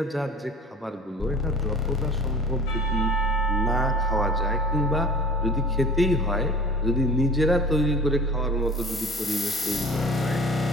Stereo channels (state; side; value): normal; both; correlation 0.42